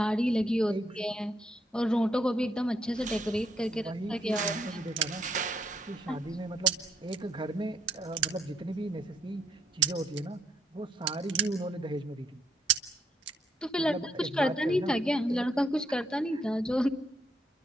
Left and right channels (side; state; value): both; normal; correlation 0.74